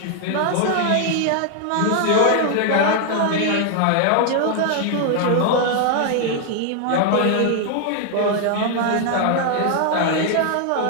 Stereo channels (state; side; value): different; both; correlation 0.00